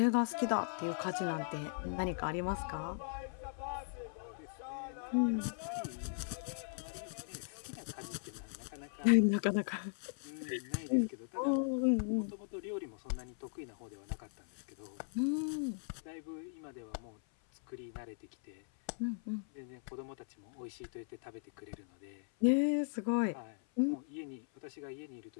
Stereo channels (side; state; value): right; silent; 52 dB below the other